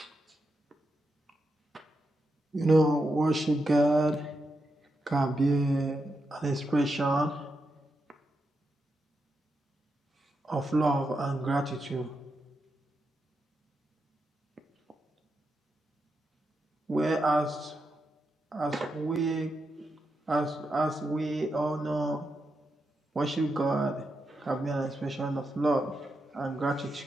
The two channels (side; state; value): both; normal; correlation 0.86